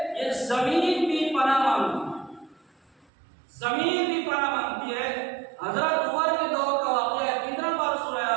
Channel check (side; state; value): left; drops out; at 3.1 s